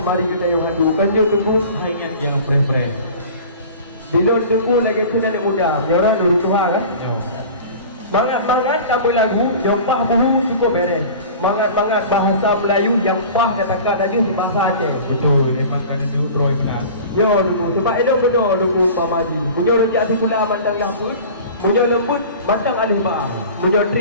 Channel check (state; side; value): inverted; both; correlation -0.40